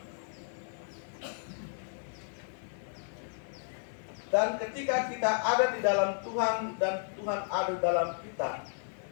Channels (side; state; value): right; silent; 55 dB below the other